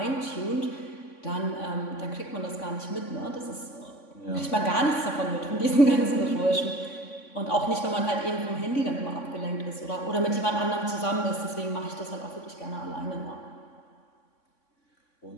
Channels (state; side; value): late; right; 3.5 ms